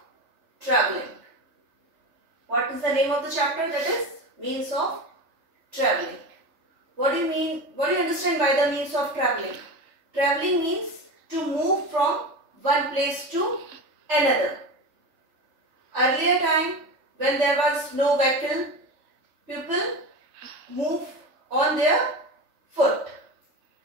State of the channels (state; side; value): late; left; 3.3 ms